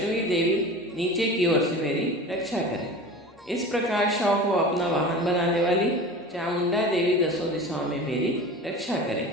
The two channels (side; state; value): both; normal; correlation 0.35